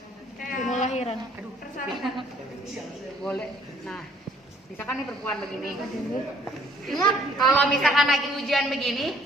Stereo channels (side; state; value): both; normal; correlation 0.62